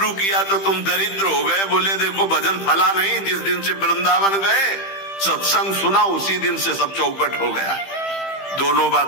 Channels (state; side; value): late; right; 15 ms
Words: किया तो तुम दरिद्र हो गए, बोले देखो भजन फला नहीं, जिस दिन से वृंदावन गए सत्संग सुना उसी दिन से सब चौपट हो गया। दोनों